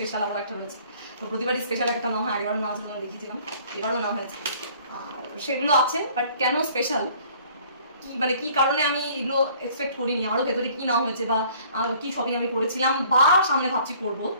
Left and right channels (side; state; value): both; inverted; correlation -0.55